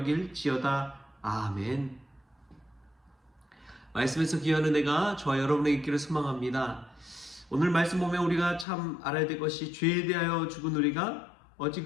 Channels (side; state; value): right; drops out; at 8.7 s